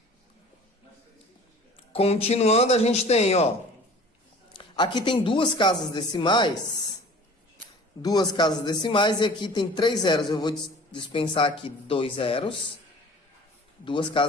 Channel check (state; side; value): normal; both; correlation 0.45